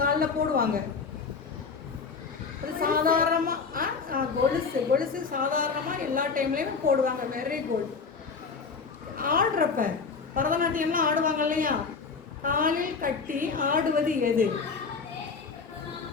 போடுவாங்க. அது சாதாரணமாக கொலுசு சாதாரணமாக எல்லா டைம்லேயுமே போடுவாங்க. Very good. ஆடுறப்ப பரதநாட்டியம்லாம் ஆடுவாங்க இல்லையா? காலில் கட்டி ஆடுவது எது?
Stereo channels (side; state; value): right; quieter; 5.0 dB